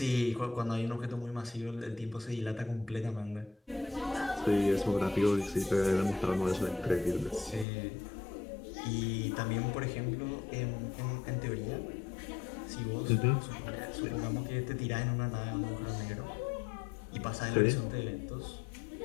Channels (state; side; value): drops out; right; at 7.7 s